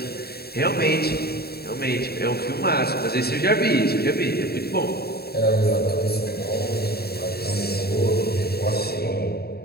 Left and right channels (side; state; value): right; late; 0.46 ms